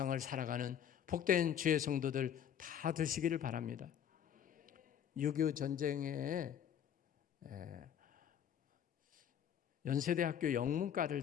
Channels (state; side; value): quieter; right; 9.1 dB